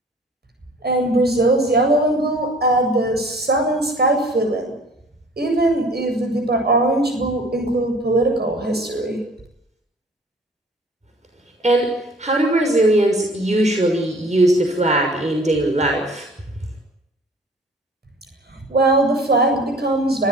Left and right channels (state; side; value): normal; both; correlation 0.50